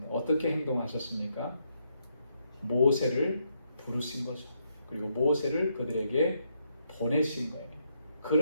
어떻게 행동하셨습니까? 모세를 부르신 거죠. 그리고 모세를 그들에게 보내신 거예요.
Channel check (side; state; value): both; inverted; correlation -0.77